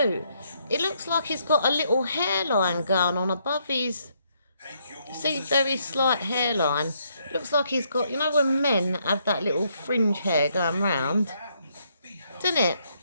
It looks like he's got a little hairline going on above his... See, very slight hairline. Looks like he's got... You know when men have that little fringe hair going round? Doesn't it?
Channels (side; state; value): both; inverted; correlation -0.73